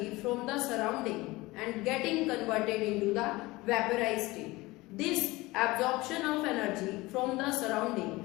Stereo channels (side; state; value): right; quieter; 20.8 dB